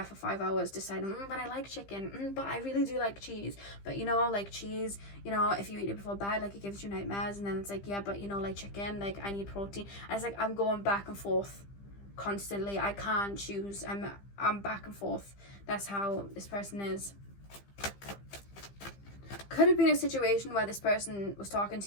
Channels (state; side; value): late; right; 15 ms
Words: for 5 hours deciding, but I like chicken, but I really do like cheese. But, you know, like cheese, you know, if you eat it before bed, like, it gives you nightmares. And then it's like, yeah, but, you know, like chicken, like, I need protein. And it's like, I'm going back and forth constantly. I can't choose. I'm back and forth. That's how this person is. Could have been a situation where this person was talking